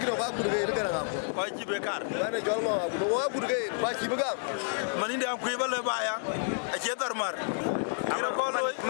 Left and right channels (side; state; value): right; silent; digital silence